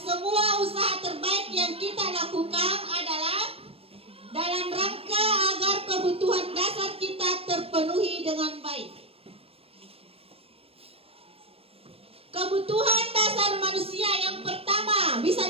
usaha terbaik yang kita lakukan adalah dalam rangka agar kebutuhan dasar kita terpenuhi dengan baik. Kebutuhan dasar manusia yang pertama, bisa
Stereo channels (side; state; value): left; late; 0.28 ms